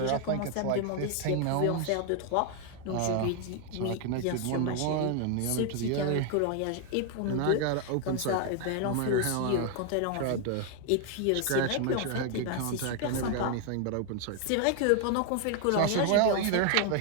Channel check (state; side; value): different; both; correlation 0.00